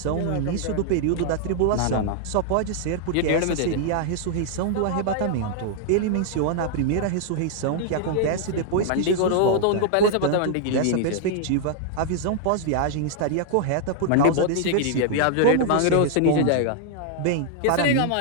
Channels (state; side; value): different; both; correlation -0.01